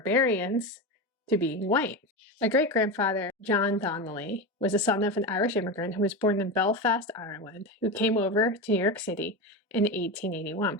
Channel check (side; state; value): both; normal; correlation 0.19